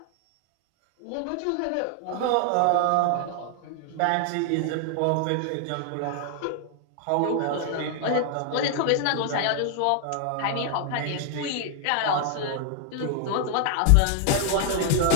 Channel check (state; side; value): different; both; correlation 0.00